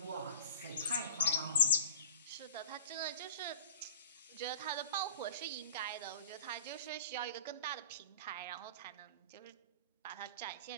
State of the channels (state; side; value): inverted; both; correlation -0.42